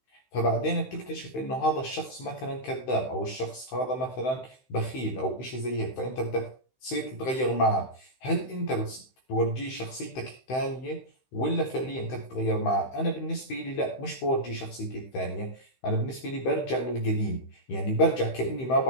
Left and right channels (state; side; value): late; right; 15 ms